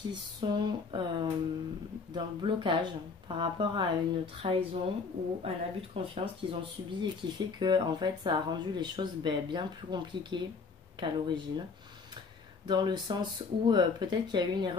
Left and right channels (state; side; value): quieter; right; 4.8 dB